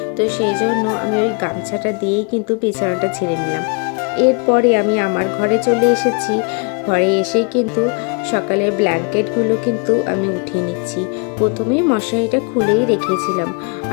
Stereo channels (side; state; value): right; quieter; 33.2 dB